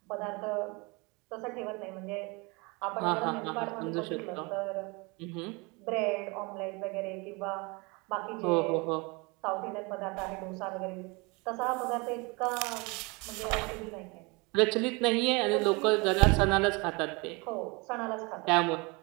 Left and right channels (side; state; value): left; quieter; 27.8 dB